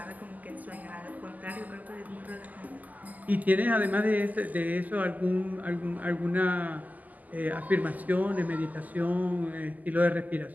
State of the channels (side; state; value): left; late; 0.080 ms